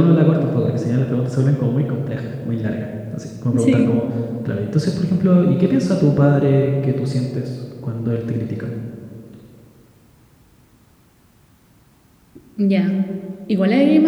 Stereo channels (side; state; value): both; identical; correlation 1.00